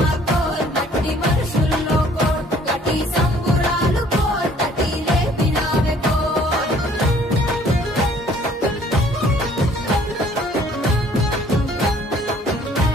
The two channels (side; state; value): both; normal; correlation 0.58